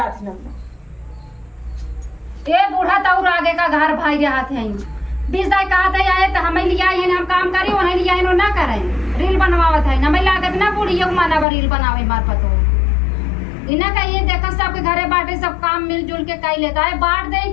ना ए बूढ़ा तौर आगे का घर भाई रहा थे 20 दाई कहा था आए तो हमें लिया है हम काम करी उन्हें लिया है ना करें रील बनवावत है हमें लागत ना बुढ़ी माना रील बनावे मार पतो इना का ये देखा सबके घरे बाटे सब काम मिलजुल के कई लेता है बांट दे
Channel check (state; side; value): drops out; right; at 11.5 s